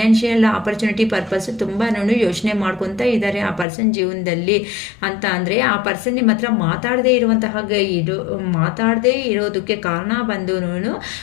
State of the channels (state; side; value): drops out; right; at 3.7 s